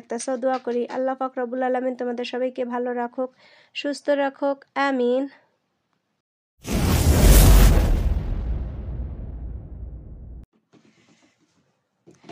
দোয়া করি আল্লাহ পাক রব্বুল আলামিন তোমাদের সবাইকে ভালো রাখুক, সুস্থ রাখুক, আমিন।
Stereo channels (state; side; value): identical; both; correlation 1.00